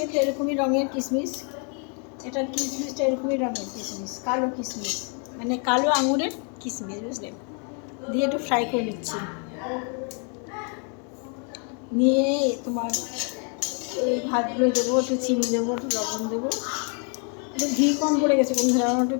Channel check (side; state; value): right; quieter; 39.5 dB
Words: এরকমই রঙের কিশমিশ, এটা কিশমিশটা এরকমই রঙের কিশমিশ, কালো কিশমিশ, মানে কালো আঙুরের কিশমিশ, বুঝলে, দিয়ে একটু ফ্রাই করে নিচ্ছি। নিয়ে তোমার এই ভাতগুলো দেবো, একটু চিনি দেবো, একটু লবণ দেবো। একটু ঘি কম পড়ে গেছে বন্ধুরা, আমার একটু